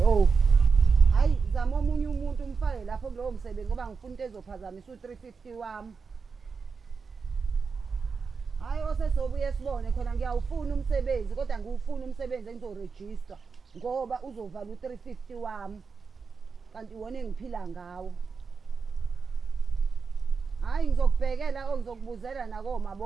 Hayi zama omunye umuntu umfake lapho kulowo msebenzi ngoba ngifuna into ezophazamisa u350 wami. Hayi osesobuye sibone khona ngiyawufuna umsebenzi kodwa ngiwufuna umsebenzi engizorejista ngoba uzovala u350 wami. Kanti wona engiphila ngawo. Hayi ngizokubhekela ngizokubuzela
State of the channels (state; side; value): quieter; left; 5.2 dB